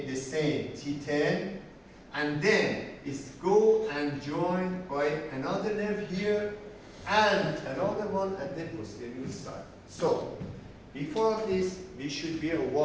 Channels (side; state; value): both; identical; correlation 1.00